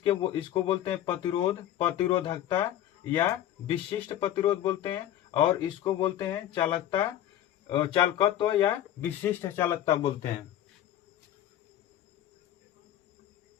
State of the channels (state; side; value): quieter; right; 12.0 dB